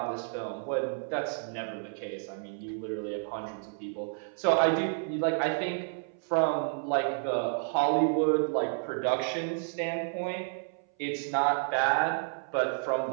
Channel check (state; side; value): silent; left; 57 dB below the other